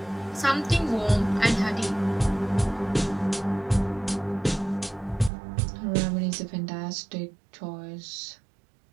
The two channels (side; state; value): left; drops out; at 5.3 s